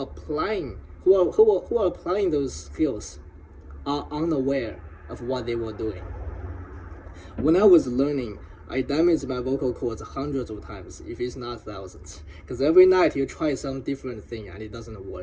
applying those skills are unaware of what they were doing. When I was learning, I damaged my vocal cords hundreds of times, if it's not thousands. Because every night you try some different thing and it doesn't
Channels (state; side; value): identical; both; correlation 1.00